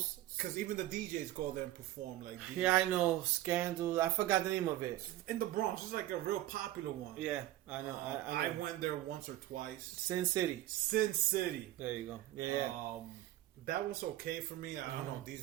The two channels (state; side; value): quieter; left; 14.9 dB